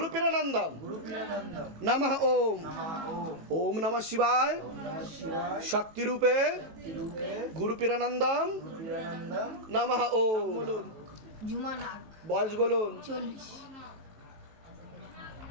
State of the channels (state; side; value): late; left; 19 ms